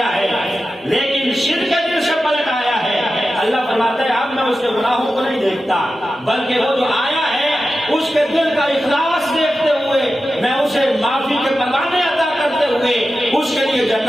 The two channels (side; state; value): both; normal; correlation 0.92